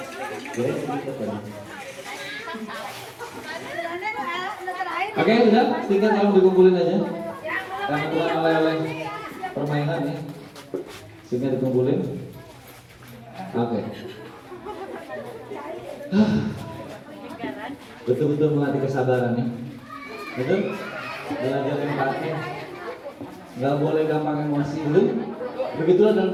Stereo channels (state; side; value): identical; both; correlation 1.00